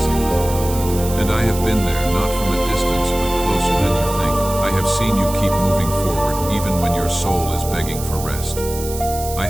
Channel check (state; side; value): noise; right; hiss, 11 dB below the sound